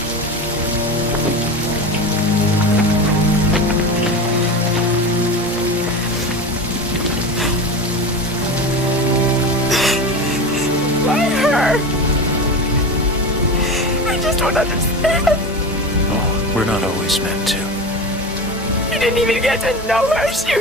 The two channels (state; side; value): normal; both; correlation 0.26